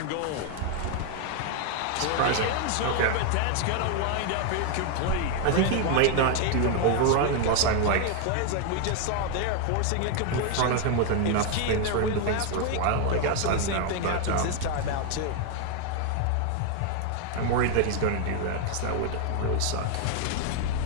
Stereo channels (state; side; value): different; both; correlation 0.00